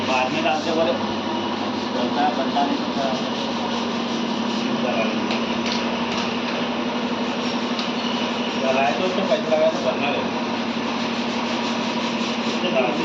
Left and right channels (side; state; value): both; identical; correlation 1.00